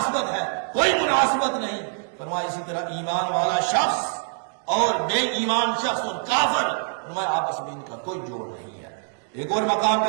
ہے، کوئی مناسبت نہیں۔ فرمایا اسی طرح ایمان والا شخص اور بے ایمان شخص اور کافر، فرمایا آپس میں ان کا کوئی جوڑ نہیں ہے۔ ایک اور مقام پہ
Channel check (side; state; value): left; silent; 62 dB below the other